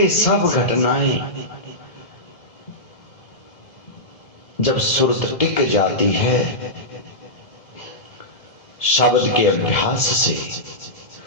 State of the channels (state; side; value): late; right; 1.8 ms